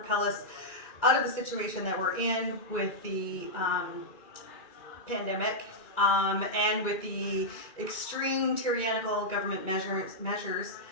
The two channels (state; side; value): late; right; 1.9 ms